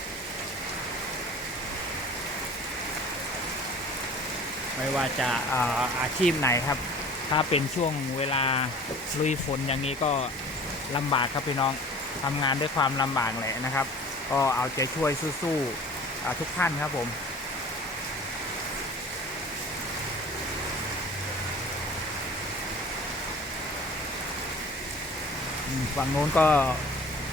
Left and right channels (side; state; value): both; normal; correlation 0.44